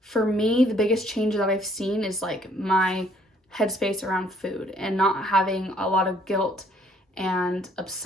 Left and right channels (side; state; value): both; normal; correlation 0.63